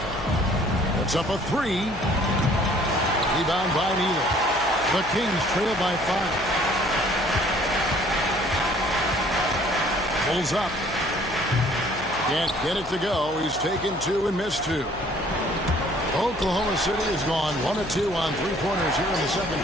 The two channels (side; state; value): left; noise; hum, 16 dB below the sound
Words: Puts up a 3. Rebound by Neely. The Kings trail by 5. Pulls up. Can't get it to go. He's taken 2 and missed 2. Oklahoma City has gone 1 of 2 on 3-pointers here in the second